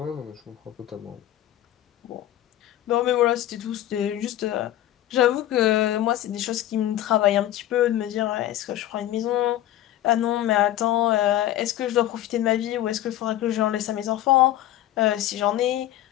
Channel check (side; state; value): right; quieter; 13.1 dB